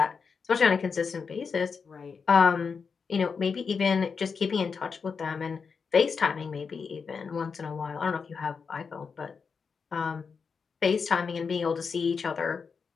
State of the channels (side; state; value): right; quieter; 5.6 dB